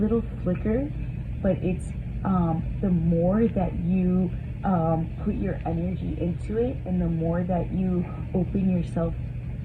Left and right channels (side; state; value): both; identical; correlation 1.00